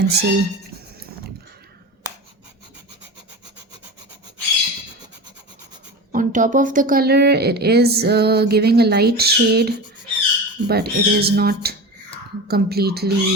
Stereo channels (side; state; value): both; normal; correlation 0.29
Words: on top of the color, it is giving a light shade, but it is not